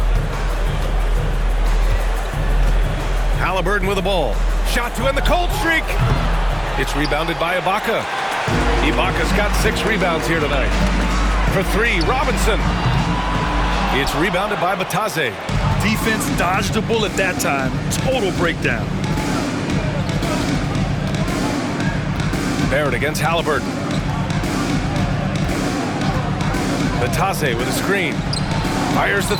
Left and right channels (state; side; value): identical; both; correlation 1.00